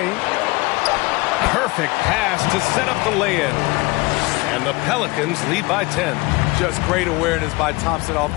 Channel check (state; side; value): quieter; right; 23.5 dB